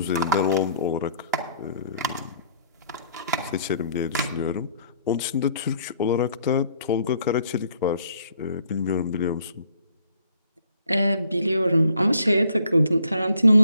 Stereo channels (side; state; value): both; inverted; correlation -0.64